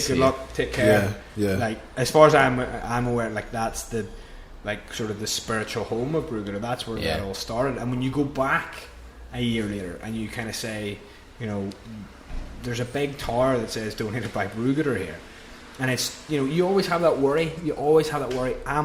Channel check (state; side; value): identical; both; correlation 1.00